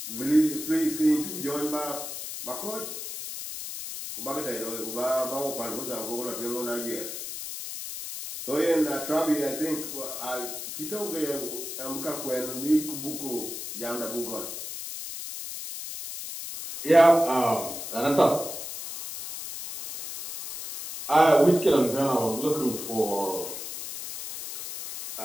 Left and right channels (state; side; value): noise; left; hiss, 7 dB below the sound